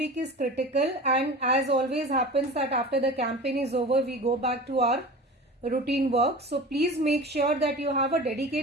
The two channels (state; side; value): normal; both; correlation 0.35